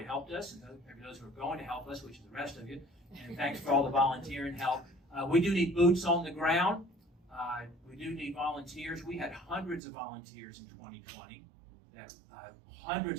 helped us and those who are going to help us, which is the rest of you. And thanks for all the volunteering help. We do need boots on the ground. We do need volunteers. We had hundreds of volunteers in 2020,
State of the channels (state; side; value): drops out; left; at 9.8 s